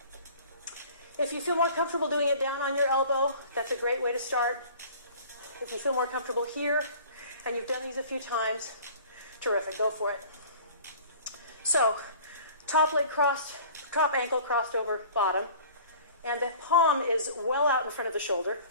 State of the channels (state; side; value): inverted; both; correlation -0.46